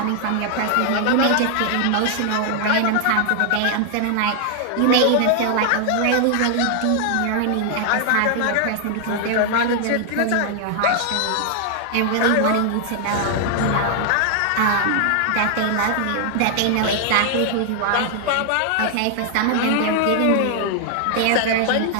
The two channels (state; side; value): different; both; correlation 0.00